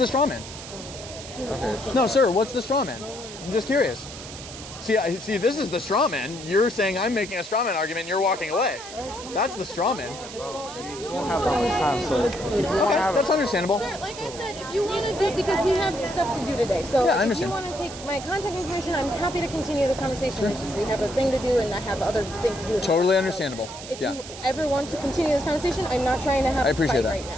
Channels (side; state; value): right; noise; hiss, 13 dB below the sound